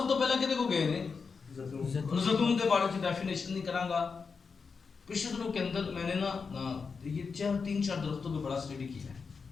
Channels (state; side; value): quieter; right; 5.2 dB